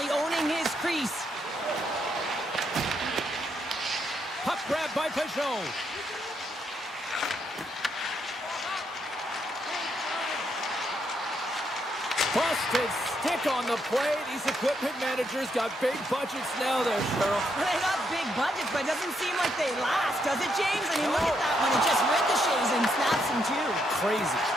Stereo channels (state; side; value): normal; both; correlation 0.77